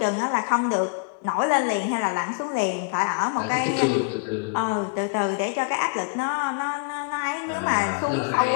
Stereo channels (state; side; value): quieter; right; 36.0 dB